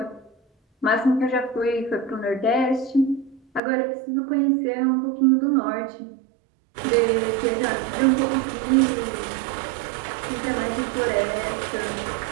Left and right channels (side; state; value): left; drops out; at 3.6 s